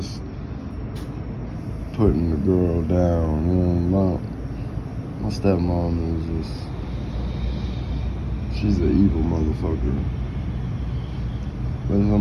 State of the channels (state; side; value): identical; both; correlation 1.00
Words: putting the girl down. My stepmom is she's an evil motherfucker. But when